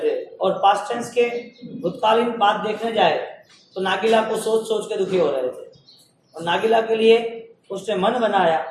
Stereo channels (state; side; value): identical; both; correlation 1.00